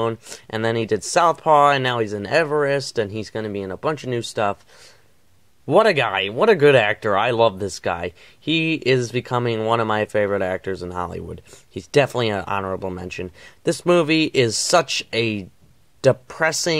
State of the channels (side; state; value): both; identical; correlation 1.00